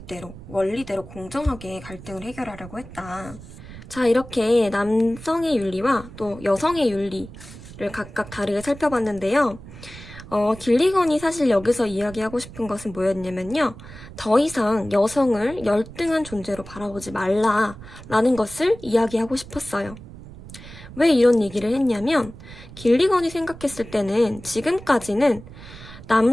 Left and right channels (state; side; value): noise; right; rumble, 16 dB below the sound